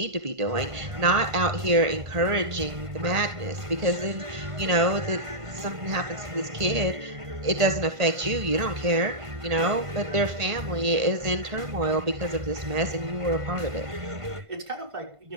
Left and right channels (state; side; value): late; left; 1.5 ms